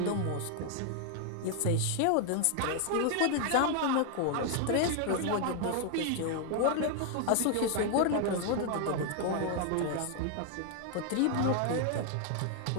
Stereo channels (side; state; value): both; different; correlation 0.00